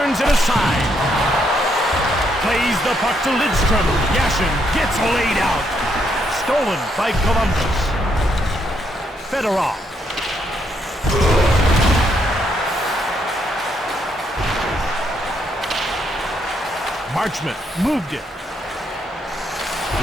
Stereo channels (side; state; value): both; normal; correlation 0.75